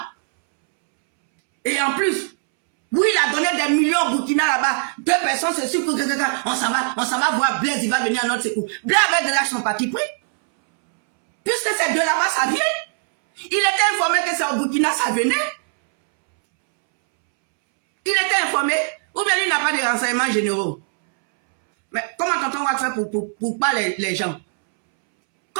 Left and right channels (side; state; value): left; silent; 65 dB below the other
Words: Et en plus, oui, il a donné des millions au Burkina là-bas. 2 personnes se suivent. On s'en va voir Blaise, il va venir à notre secours. Blaise avec de l'argent parti pris. Puisque ces deux là-bas, ça vient. Il était informé que c'est au Burkina, ça venait. Il était informé, ou bien il n'a pas de renseignements généraux. Mais comment tonton va faire pour pas les gens?